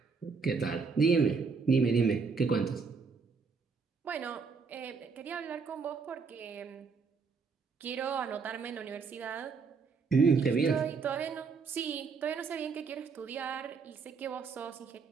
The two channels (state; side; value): quieter; left; 5.1 dB